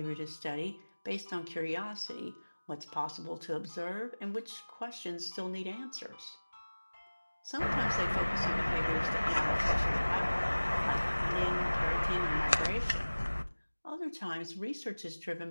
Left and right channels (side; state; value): both; inverted; correlation -1.00